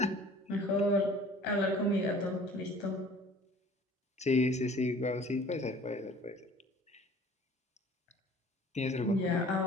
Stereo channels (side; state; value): both; normal; correlation 0.50